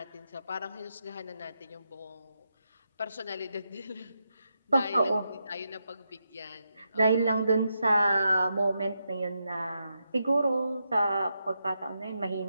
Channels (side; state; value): both; inverted; correlation -0.84